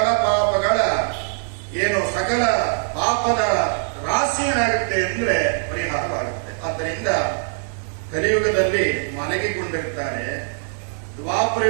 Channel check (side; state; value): left; silent; digital silence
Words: ಪಾಪಗಳ ಸಕಲ ಪಾಪದ ರಾಶಿ ಏನಾಗುತ್ತೆ ಅಂದ್ರೆ ಪರಿಹಾರವಾಗುತ್ತೆ. ಆದ್ದರಿಂದ ಕಲಿಯುಗದಲ್ಲಿ ಮಲಗಿಕೊಂಡಿರ್ತಾರೆ,